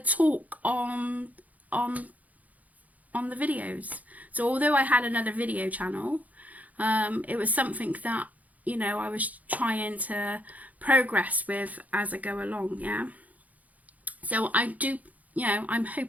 on the videos. So although I had another video channel, it was something that, you know, I was trying to progress with as I go along, yeah. So I do, you know, I'm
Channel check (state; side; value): late; left; 0.076 ms